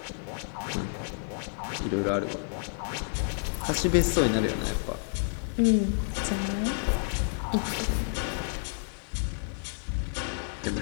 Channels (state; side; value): silent; right; 58 dB below the other